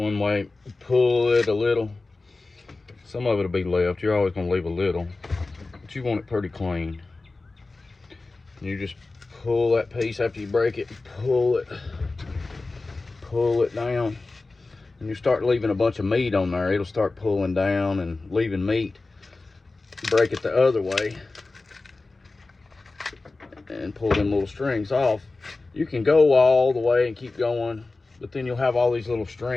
way, pull it a little. Some of it'll be left. You're always gonna leave a little, but you want it pretty clean. You just pull that piece after you break it, pull it down. And you start leaving a bunch of meat on there, it'll start pulling down and leaving meat. Break it the other way and pull them little strings off. You can go all the way and keep going, but then you'll have all these little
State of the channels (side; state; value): right; quieter; 3.4 dB